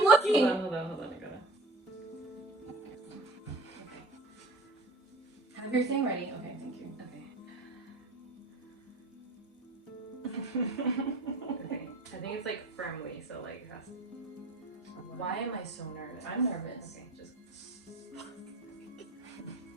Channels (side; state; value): both; normal; correlation 0.40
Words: looking. Hold on. I gotta. Okay. Have your thing ready. Okay, thank you. Okay. I think it's like firmly, so like it has to... Why am I so nervous? I'm nervous. Okay, just...